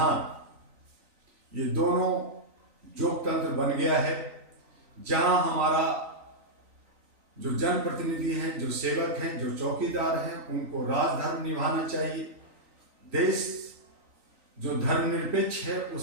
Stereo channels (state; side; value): late; left; 3.9 ms